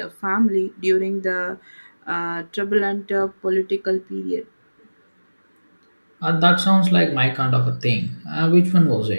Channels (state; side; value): inverted; both; correlation -1.00